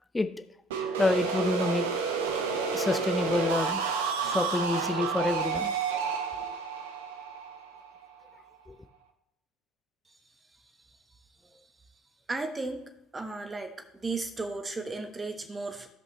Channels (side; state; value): both; normal; correlation 0.53